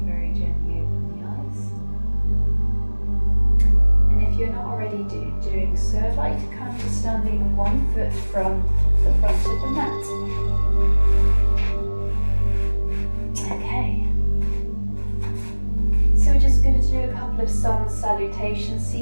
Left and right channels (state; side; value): inverted; both; correlation -1.00